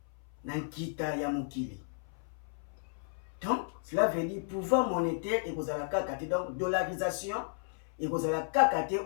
na nkita ya mokili. Donc cela veut dire pouvoir monétaire et kozala kaka te, donc dollarisation et kozala kaka te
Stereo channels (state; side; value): silent; right; 55 dB below the other